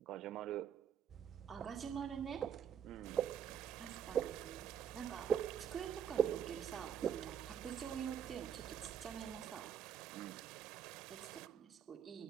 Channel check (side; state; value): left; quieter; 8.5 dB